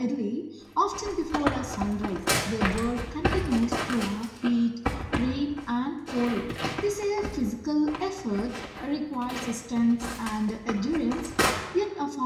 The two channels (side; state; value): both; identical; correlation 1.00